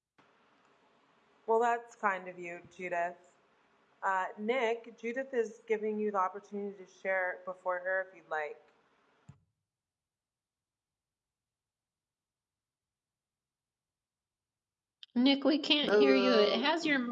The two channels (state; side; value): identical; both; correlation 1.00